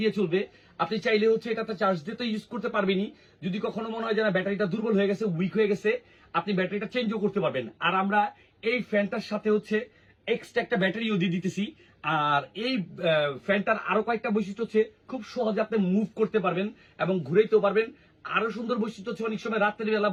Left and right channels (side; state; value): both; identical; correlation 1.00